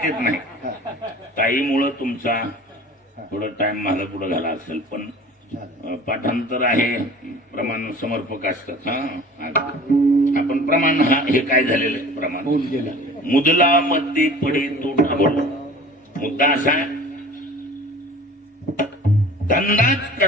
नाही. ताईमुळं तुमचा थोडा टाइम माझा पुढे झाला असेल, पण पाठांतर आहे, प्रमाण समर्पक असतात. आपण प्रमाण हे काय झालेलं आहे प्रमाण. मुदला मध्ये पडे तो ढाबळ. मुद्दा असा धंदाच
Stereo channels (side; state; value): both; normal; correlation 0.43